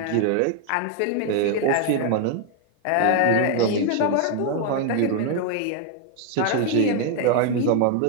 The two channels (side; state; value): both; different; correlation 0.01